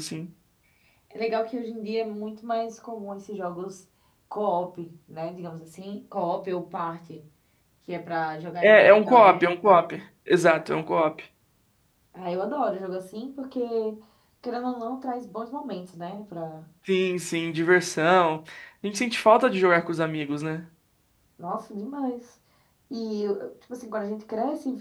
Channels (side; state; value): both; identical; correlation 1.00